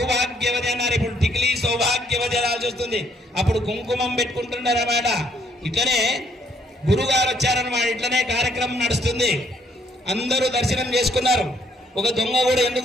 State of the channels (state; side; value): normal; both; correlation 0.68